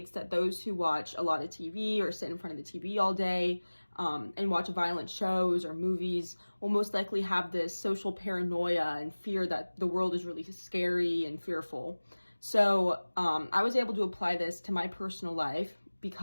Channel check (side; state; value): both; inverted; correlation -1.00